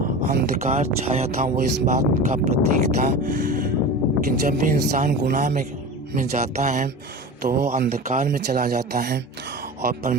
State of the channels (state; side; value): normal; both; correlation 0.32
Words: अंधकार छाया था वो इस बात का प्रतीक था कि जब भी इंसान गुनाह में जाता है तो वो अंधकार में चला जाता है और